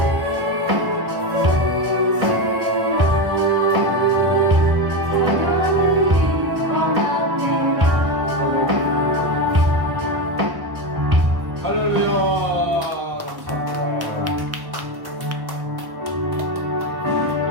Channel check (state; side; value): late; left; 1.1 ms